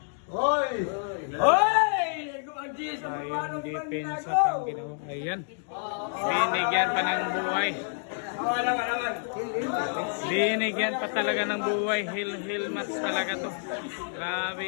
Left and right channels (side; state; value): right; silent; digital silence